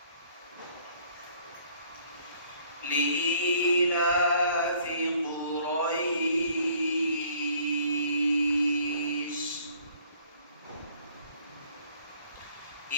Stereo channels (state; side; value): inverted; both; correlation -0.59